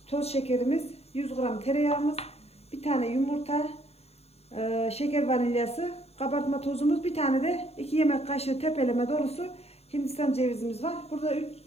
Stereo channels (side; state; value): right; late; 0.30 ms